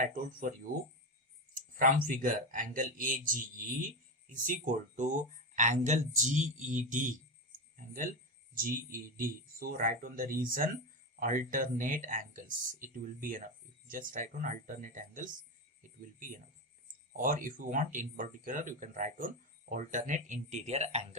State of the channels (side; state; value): both; normal; correlation 0.14